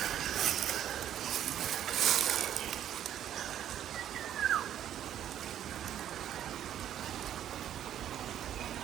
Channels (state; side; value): quieter; left; 10.6 dB